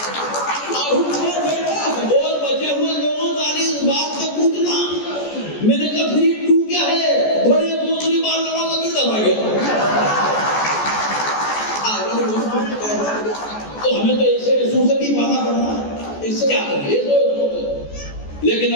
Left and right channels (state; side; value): late; right; 14 ms